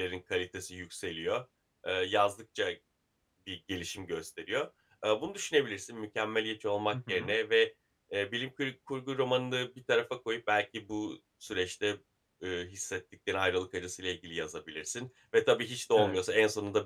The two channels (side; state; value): both; identical; correlation 1.00